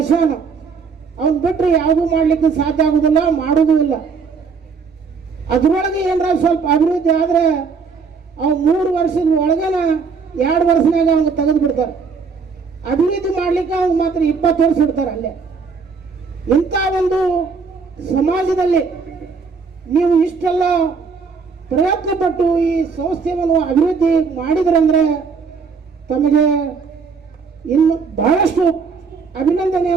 ಅವನ್ ಬಿಟ್ಟರೆ ಯಾವುದೂ ಮಾಡಲಿಕ್ಕೆ ಸಾಧ್ಯ ಆಗುದಿಲ್ಲ, ಮಾಡುವುದೂ ಇಲ್ಲ. ಅದರೊಳಗೆ ಏನಾರ ಸ್ವಲ್ಪ ಅಭಿವೃದ್ಧಿ ಆದರೆ ಅವು 3 ವರ್ಷದ ಒಳಗನ 2 ವರ್ಷನಾಗ ಅವ್ನು ತೆಗೆದು ಬಿಡ್ತಾರೆ. ಅಭಿವೃದ್ಧಿ ಮಾಡ್ಲಿಕ್ಕೆ ಅವ್ನು ಮಾತ್ರ 20 ವರ್ಷ ಇಡ್ತಾರೆ ಅಲ್ಲೇ. ಇಂಥ ಒಂದು ಸಮಾಜದಲ್ಲಿ ನೀವು ಇಷ್ಟೆಲ್ಲ ಪ್ರಯತ್ನ ಪಟ್ಟು ಈ ಸಂಸ್ಥೆಯನ್ನು ಅಭಿವೃದ್ಧಿ ಮಾಡಿದ್ರಂದ್ರೆ ತಮಗೆ ಇನ್ನು ಬಹಳಷ್ಟು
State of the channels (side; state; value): left; quieter; 5.3 dB